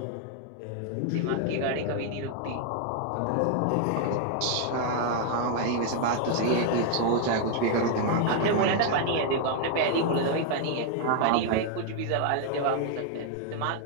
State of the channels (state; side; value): different; both; correlation 0.00